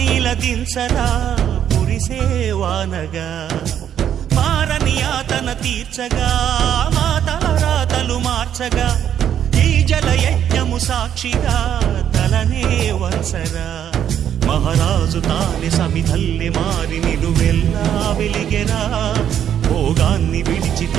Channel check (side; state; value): left; quieter; 9.7 dB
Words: ఇలదించరా కురిసేవానగా మారని యాతన తీర్చగా మాతారాతలు మార్చగా ఈ జలయజ్ఞము సాక్షిగా తలనే వంచరా మహారాజు తానే సమిధల్లి మారి నిలువెల్లా వెలిగెరా భోగాన్ని విడిచి